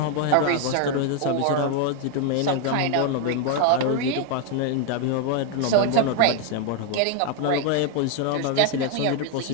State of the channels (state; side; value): different; both; correlation 0.01